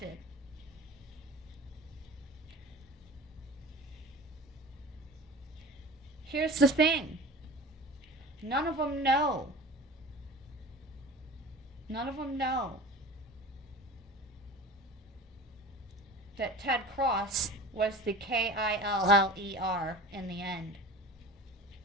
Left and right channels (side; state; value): both; normal; correlation 0.37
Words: Here's the thing. None of them know. None of them know that Ted Cross was the Killer in the end.